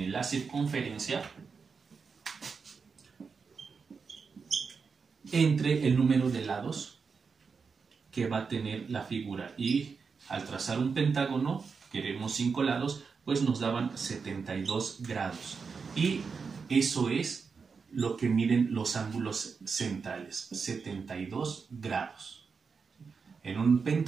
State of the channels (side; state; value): left; quieter; 5.3 dB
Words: la circunferencia entre el número de lados que va a tener la figura. Y al trazar un pentágono, queremos 5 lados, pues nos daban 72 grados. Y eso es lo que miden los ángulos centrales, 72 grados. En un